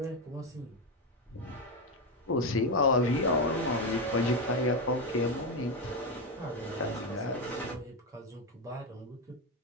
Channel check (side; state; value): both; normal; correlation 0.10